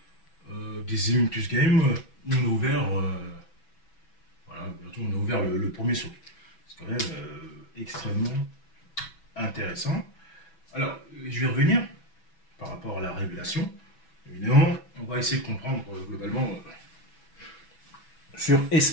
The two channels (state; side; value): late; right; 6.1 ms